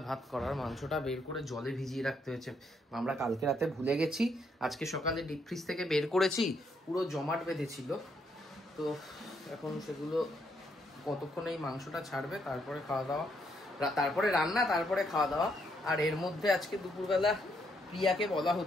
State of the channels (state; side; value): normal; both; correlation 0.74